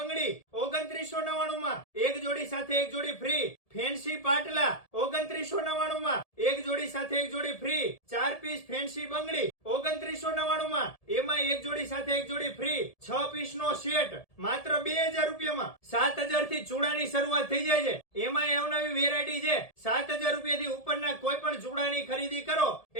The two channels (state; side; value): late; right; 1.7 ms